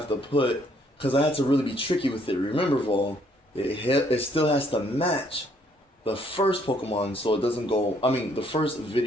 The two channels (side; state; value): both; normal; correlation 0.67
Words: to put, because I had to really be tricky with it. Remember, VoL, it still has to match the first Pokemon, so it doesn't go, the first